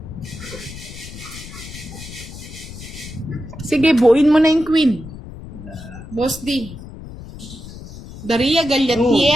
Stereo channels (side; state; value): left; noise; rumble, 14 dB below the sound